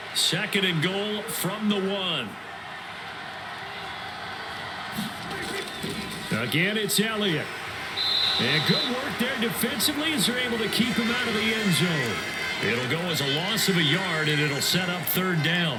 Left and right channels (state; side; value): identical; both; correlation 1.00